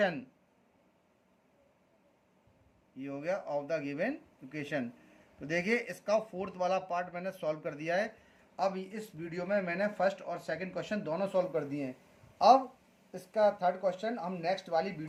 ये हो गया ऑफ द गिवन इक्वेशन। तो देखिए इसका फोर्थ वाला पार्ट मैंने सॉल्व कर दिया है। अब इस वीडियो में मैंने फर्स्ट और सेकंड क्वेश्चन दोनों सॉल्व कर दिए हैं। अब इसका थर्ड क्वेश्चन हम नेक्स्ट वाली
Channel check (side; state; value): both; identical; correlation 1.00